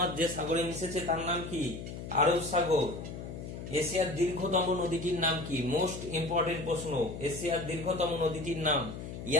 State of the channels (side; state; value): left; noise; hum, 9 dB below the sound